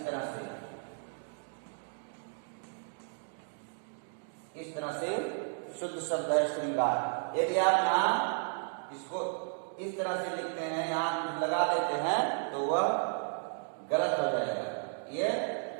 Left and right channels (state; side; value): silent; left; 55 dB below the other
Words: तरह से, इस तरह से शुद्ध शब्द है श्रृंगार। यदि आप यहाँ इसको इस तरह से लिखते हैं, यहाँ लगा देते हैं, तो वह गलत हो जाएगा। ये